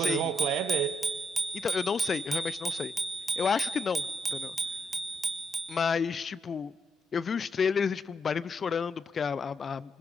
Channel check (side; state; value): both; normal; correlation 0.80